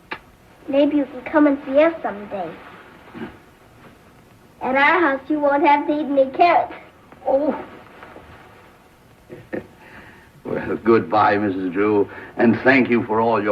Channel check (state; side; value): identical; both; correlation 1.00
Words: Maybe you can come and see us someday. At our house, you won't have to eat any carrots. Oh. Well, goodbye, Mrs. Drew, and thank you for all